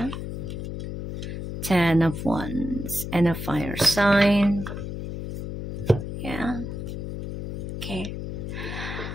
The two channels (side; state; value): left; noise; hum, 6 dB below the sound